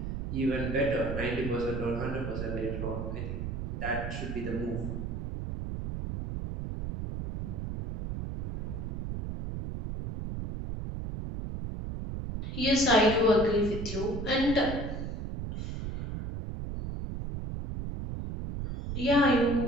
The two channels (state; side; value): noise; right; rumble, 5 dB below the sound